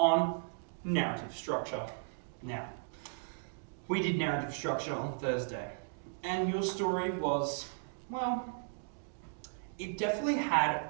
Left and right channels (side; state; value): left; silent; digital silence